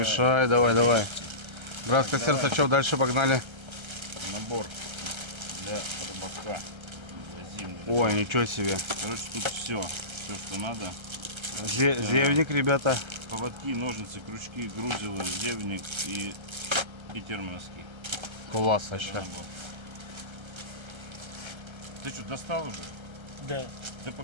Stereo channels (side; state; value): left; late; 1.3 ms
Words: давай. Братское Так, давай. сердце, что дальше погнали? Набор для рыбака. Для зимнего. Ой, ничего себе. Короче, тут все, что надо. Зевник, ребята. Поводки, ножницы, крючки, грузилы, зевник и термоноски. Класс Это вообще. набор. Ты что, достал уже? Да. Да